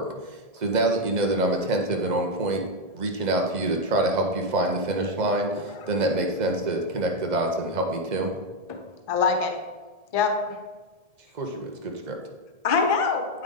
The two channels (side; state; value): left; late; 1.7 ms